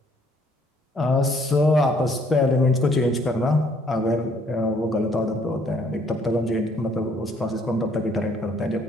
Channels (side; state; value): both; normal; correlation 0.64